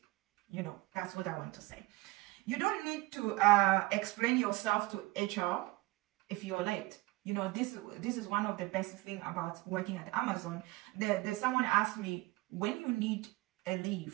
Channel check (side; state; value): left; quieter; 20.7 dB